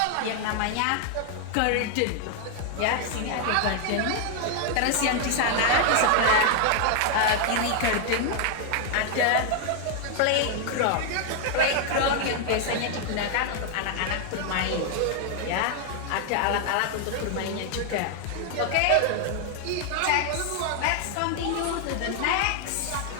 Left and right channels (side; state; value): both; different; correlation 0.00